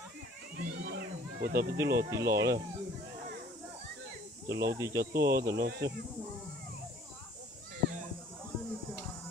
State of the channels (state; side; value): normal; both; correlation 0.54